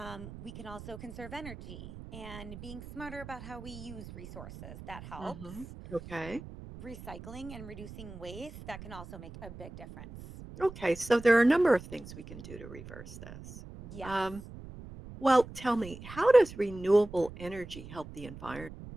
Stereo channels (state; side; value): noise; right; rumble, 14 dB below the sound